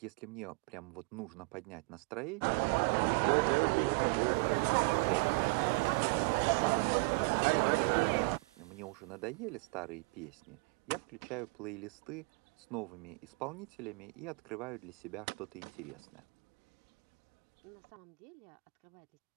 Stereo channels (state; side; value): quieter; left; 32.4 dB